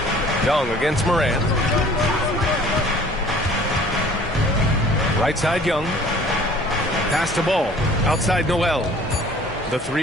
Young against Morant. Right side Young. Pass to ball. Outside Noel. The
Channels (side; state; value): both; normal; correlation 0.51